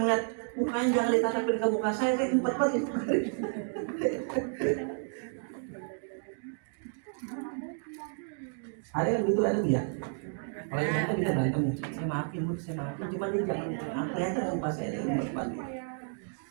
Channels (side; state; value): left; silent; 57 dB below the other